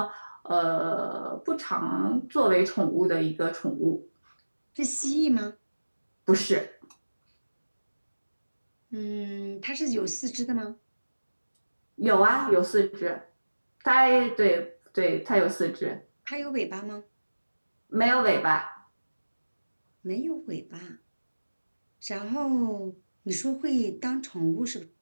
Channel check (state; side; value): inverted; both; correlation -1.00